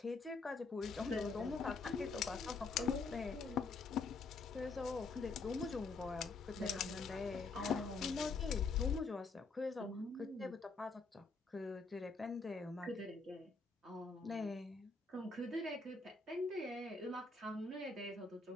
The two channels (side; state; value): right; quieter; 4.1 dB